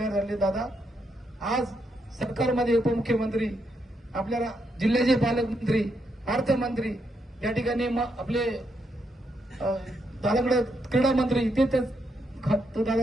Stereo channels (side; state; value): both; normal; correlation 0.79